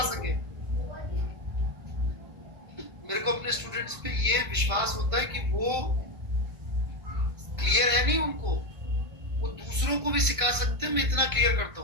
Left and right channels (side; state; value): left; late; 1.6 ms